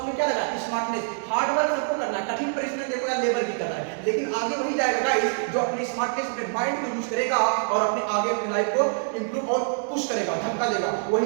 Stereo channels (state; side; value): silent; left; digital silence